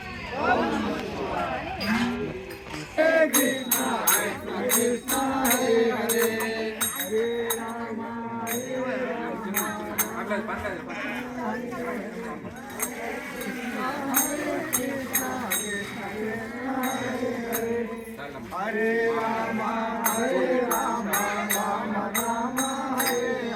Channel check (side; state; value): both; identical; correlation 1.00